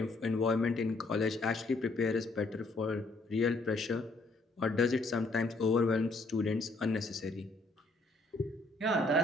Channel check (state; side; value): quieter; right; 3.1 dB